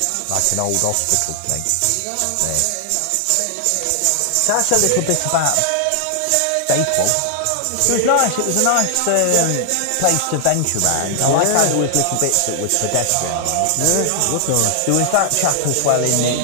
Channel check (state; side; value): different; both; correlation 0.00